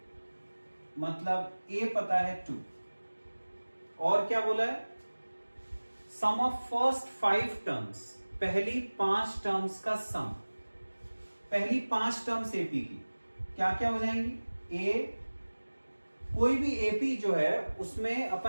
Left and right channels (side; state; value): both; inverted; correlation -1.00